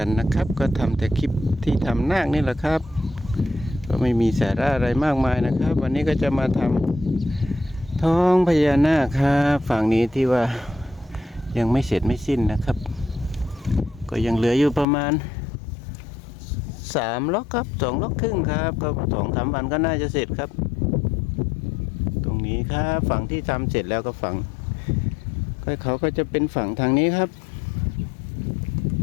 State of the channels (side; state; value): right; drops out; at 14.9 s